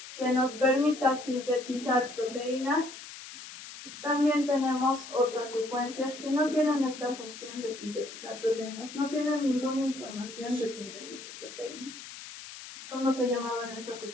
que nos permita sintetizar proteínas, también tenemos otras secuencias que no tienen esta función de sintetizar proteínas, no tienen ninguna información de síntesis de proteínas. ¿Cómo se llamaban esas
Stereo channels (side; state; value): left; noise; hiss, 13 dB below the sound